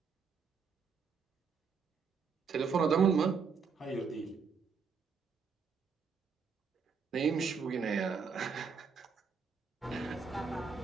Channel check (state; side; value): quieter; left; 5.7 dB